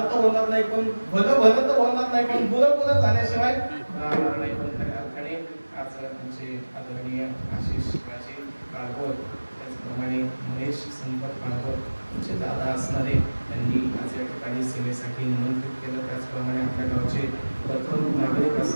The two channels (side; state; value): both; inverted; correlation -1.00